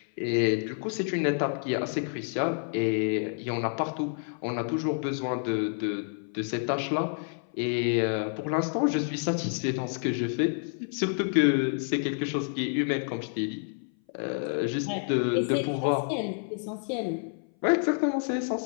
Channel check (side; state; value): right; silent; 58 dB below the other